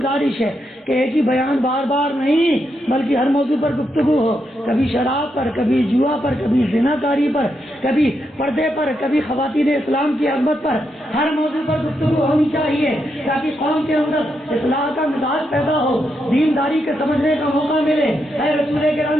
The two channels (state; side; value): normal; both; correlation 0.82